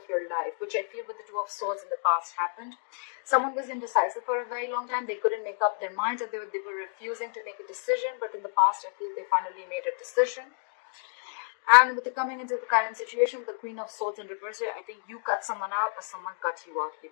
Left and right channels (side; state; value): right; silent; 56 dB below the other